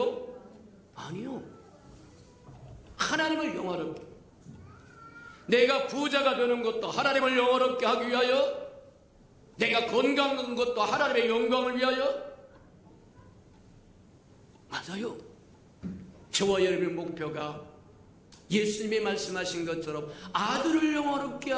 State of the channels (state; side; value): identical; both; correlation 1.00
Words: 아니요. 하나님을 영화롭게, 내가 부자가 되는 것도 하나님을 영화롭게 하기 위하여, 내가 건강한 것도 하나님의 영광을 위하여. 맞아요. 저와 여러분의 목표가 예수님이 말씀하신 것처럼 아들을 영화롭게